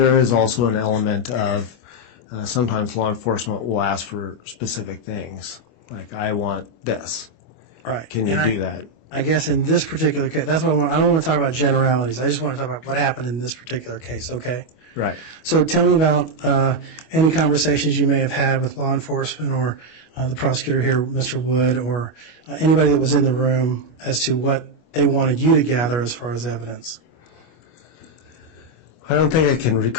is also an element of sometimes law enforcement will ask for specific things, like I want this. Right. Can you do that? I guess in this particular case, that's what I don't want to talk about generalities. I just want to talk about what happened in this particular case, okay? Right. So tell me about any conversations you may have had with law enforcement or the prosecutor here, Mr. Wood, or anybody that was in the room as to what they wanted you to gather as far as evidence. I don't think I can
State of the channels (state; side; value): late; right; 25 ms